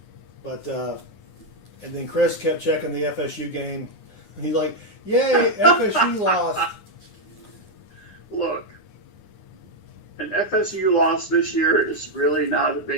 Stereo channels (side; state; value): right; late; 9.7 ms